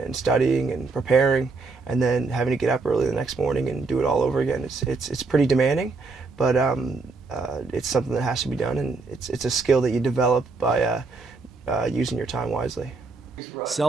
studying and preparing, and then having to get up early the next morning and do it all over again. It's pretty demanding, but it's something that has to be done, and it's a skill that you develop by using your time wisely.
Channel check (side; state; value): left; quieter; 3.9 dB